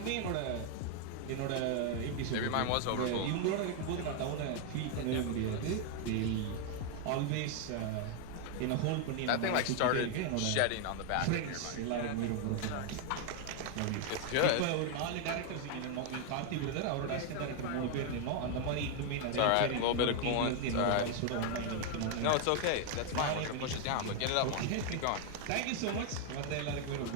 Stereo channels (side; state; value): both; different; correlation 0.00